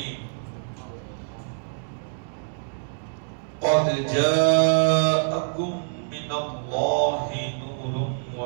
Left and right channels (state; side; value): silent; left; digital silence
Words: قد جاءكم من الله نور